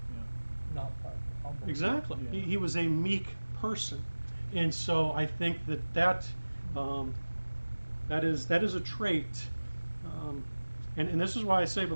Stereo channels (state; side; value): inverted; both; correlation -1.00